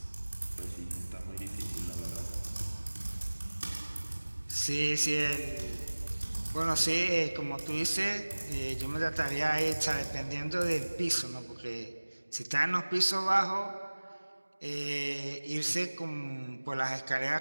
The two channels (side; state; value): both; inverted; correlation -1.00